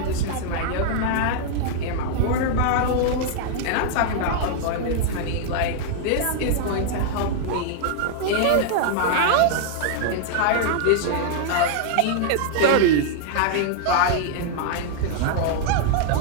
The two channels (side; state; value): both; different; correlation -0.01